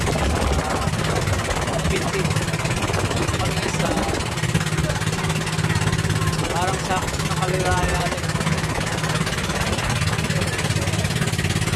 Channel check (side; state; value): both; identical; correlation 1.00